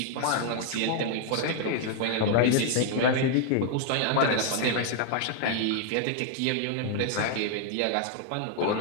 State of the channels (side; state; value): both; different; correlation 0.00